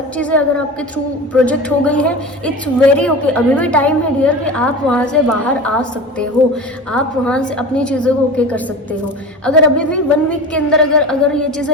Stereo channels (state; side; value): normal; both; correlation 0.32